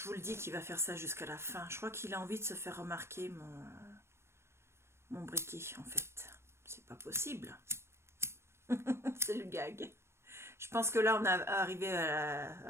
vous le dis qu'il va faire ça jusqu'à la fin, je crois qu'il a envie de se faire remarquer mon briquet en fait. C'est pas possible. C'est le gag. Je pense que là on est arrivé à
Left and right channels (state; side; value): late; left; 0.13 ms